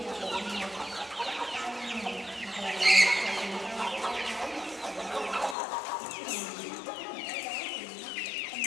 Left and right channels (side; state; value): right; drops out; at 5.6 s